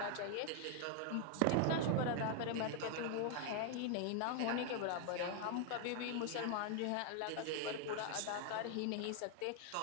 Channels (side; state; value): both; different; correlation 0.00